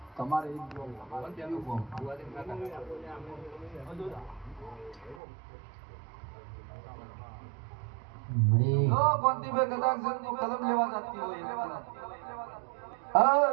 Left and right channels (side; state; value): left; drops out; at 5.2 s